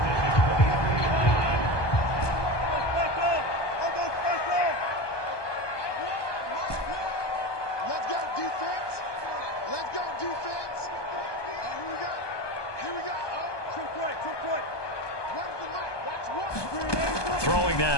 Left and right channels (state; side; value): late; right; 1.2 ms